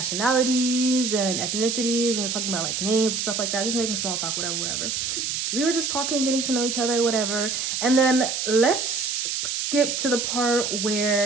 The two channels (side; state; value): right; noise; hiss, 1 dB below the sound